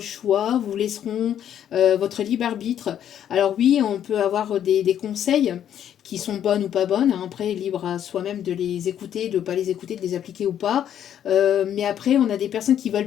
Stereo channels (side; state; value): right; quieter; 10.0 dB